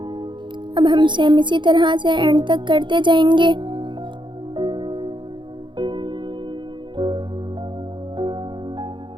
अब हम सेम इसी तरह से एंड तक करते जाएंगे।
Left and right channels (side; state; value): left; late; 0.23 ms